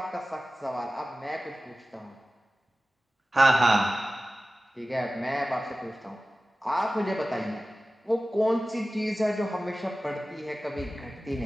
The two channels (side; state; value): both; normal; correlation 0.96